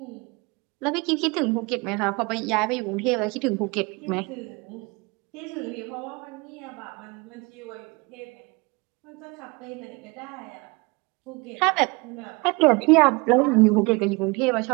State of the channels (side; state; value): left; quieter; 27.3 dB